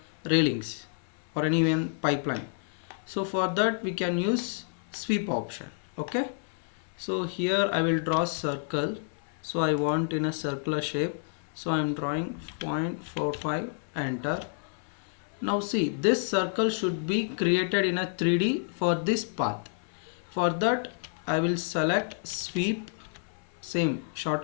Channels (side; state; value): right; silent; 58 dB below the other